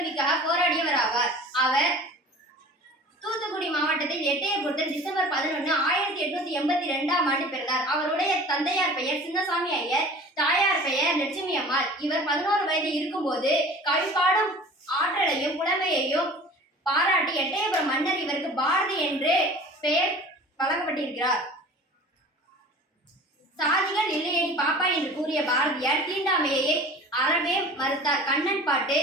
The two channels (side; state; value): both; normal; correlation 0.42